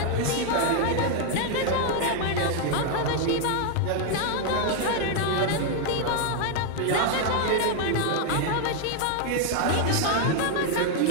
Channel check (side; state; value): both; different; correlation 0.00